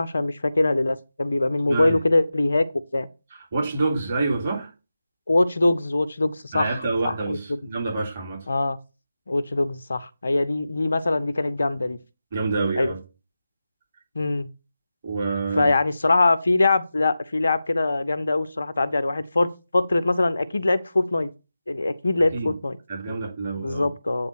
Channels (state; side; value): inverted; both; correlation -0.93